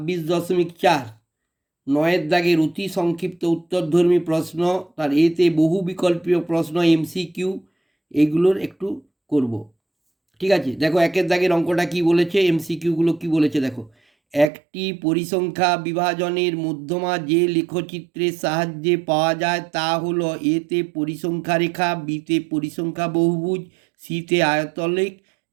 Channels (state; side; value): drops out; left; at 14.5 s